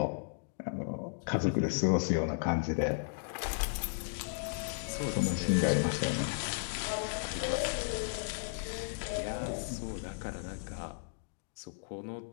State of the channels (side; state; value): right; silent; digital silence